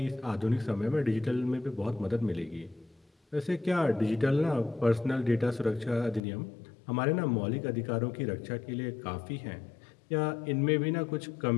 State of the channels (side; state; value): right; drops out; at 6.2 s